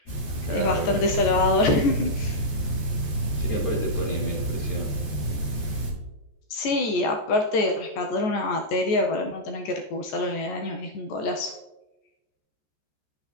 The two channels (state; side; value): late; right; 14 ms